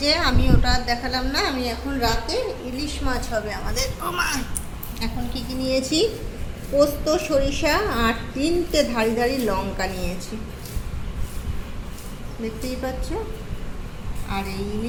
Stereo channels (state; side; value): identical; both; correlation 1.00